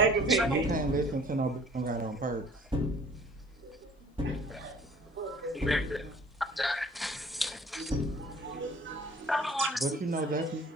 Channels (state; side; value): normal; both; correlation 0.51